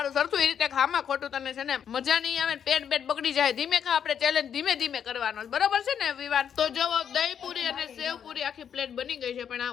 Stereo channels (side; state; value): right; quieter; 8.3 dB